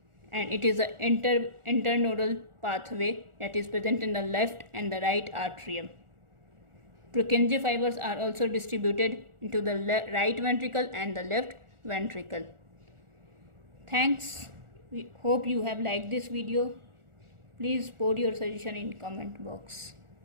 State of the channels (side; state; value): left; late; 1.4 ms